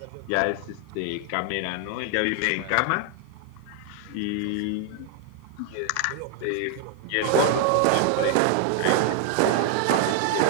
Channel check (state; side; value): different; both; correlation 0.00